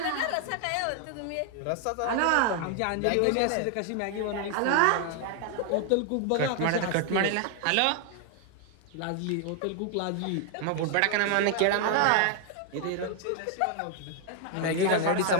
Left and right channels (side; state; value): both; different; correlation 0.00